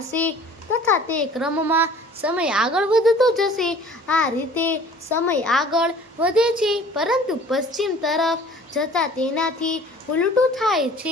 હશે તથા તે ક્રમમાં સમય આગળ વધતો જશે. આ રીતે સમય આગળ વધે છે પરંતુ પશ્ચિમ તરફ જતાં તેનાથી ઉલટું થાય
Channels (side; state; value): both; normal; correlation 0.50